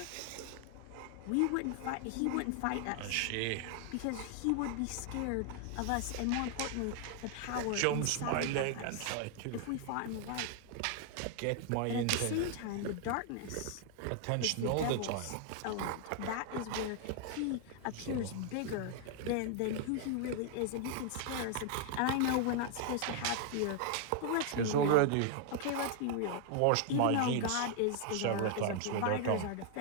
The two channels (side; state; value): both; different; correlation 0.00